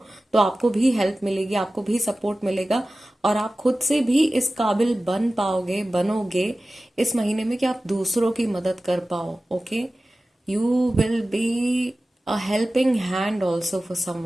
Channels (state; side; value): normal; both; correlation 0.96